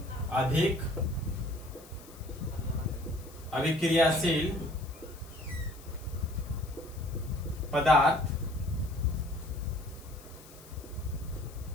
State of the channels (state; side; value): noise; left; hiss, 21 dB below the sound